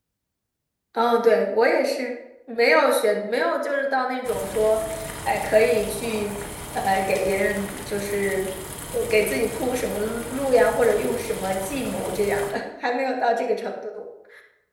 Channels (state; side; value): identical; both; correlation 1.00